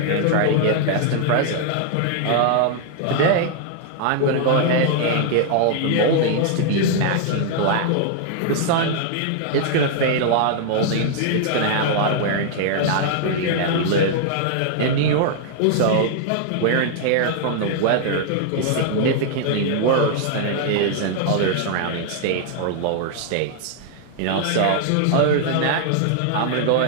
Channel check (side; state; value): both; different; correlation 0.00